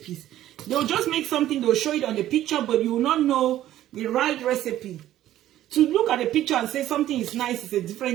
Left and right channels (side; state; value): left; quieter; 13.1 dB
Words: They'll just make something, they'll show it on the picture, but you will not know the right recipe. To look at the picture and say something is nice is a